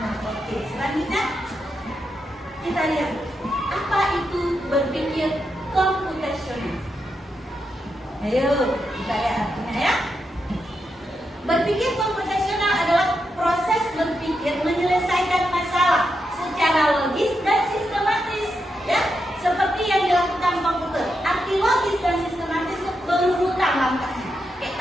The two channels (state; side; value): normal; both; correlation 0.85